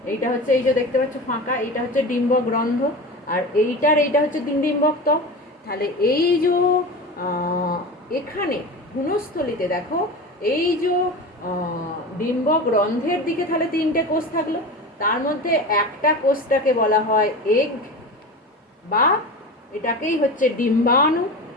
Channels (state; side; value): normal; both; correlation 0.29